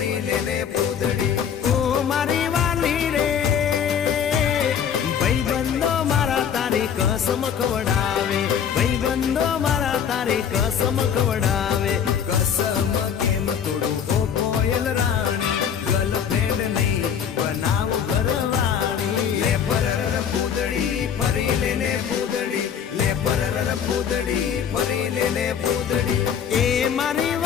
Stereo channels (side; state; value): right; quieter; 8.0 dB